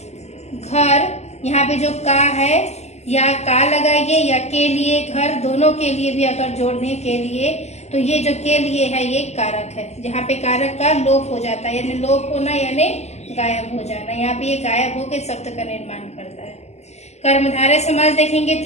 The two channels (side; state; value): right; late; 0.32 ms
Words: घर, यहाँ पे जो का है या का लगाइए या के लिए घर, दोनों के लिए भी अगर जोड़ने के लिए तो ये जो के लिए है ये कारक है। जहाँ पे कारक का लोप हो जाता है यानी लोप होना यानी गायब हो जाना, यहाँ पे ये गायब होकर शब्द का निर्माण करता है। कर्मधारय समास देखेंगे